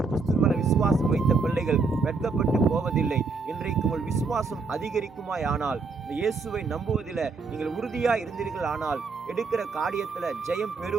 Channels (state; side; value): quieter; left; 4.4 dB